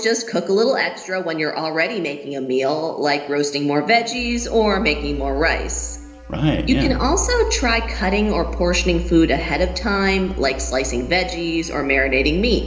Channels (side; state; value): both; identical; correlation 1.00